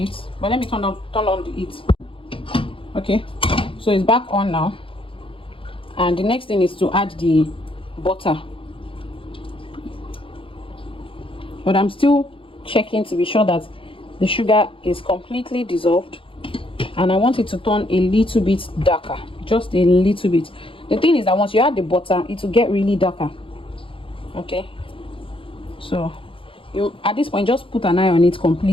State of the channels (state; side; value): late; right; 0.26 ms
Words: but let me turn on the heat. Okay, so it's back on now, and the next thing is to add the butter, but I'm still checking to be sure that the sugar is completely dissolved, and I want it to turn a little bit darker, just a little bit. The thing is that once you add the butter, it will get really darker. Okay, so you at this point just put an eye on it